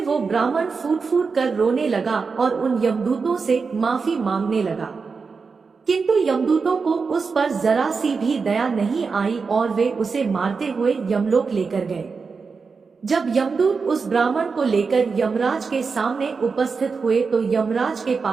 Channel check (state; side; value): quieter; left; 5.0 dB